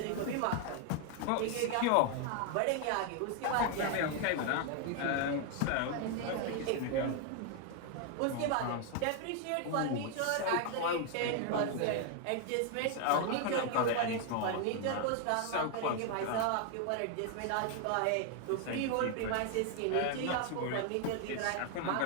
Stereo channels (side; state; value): both; different; correlation 0.00